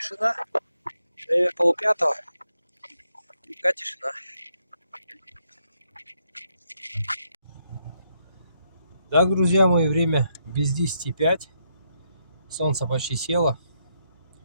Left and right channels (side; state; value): both; inverted; correlation -0.78